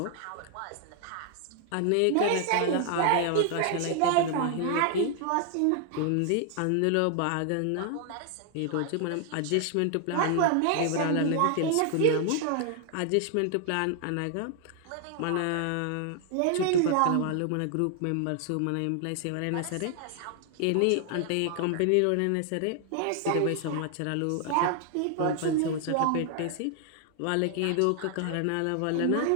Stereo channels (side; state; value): both; different; correlation 0.00